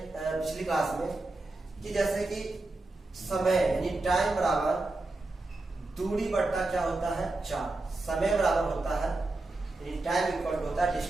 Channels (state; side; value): quieter; left; 3.0 dB